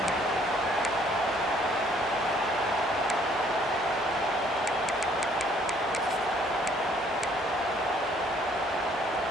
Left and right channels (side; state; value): both; normal; correlation 0.62